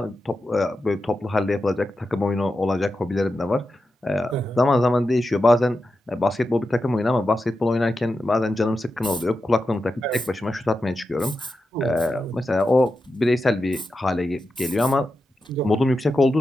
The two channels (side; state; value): both; normal; correlation 0.90